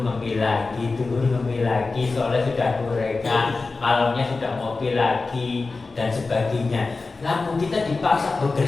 lagi, turun ngopi lagi, sore sudah gorengan, malamnya sudah ngopi lagi dan sebagainya. Lalu kita dipaksa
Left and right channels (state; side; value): quieter; right; 3.8 dB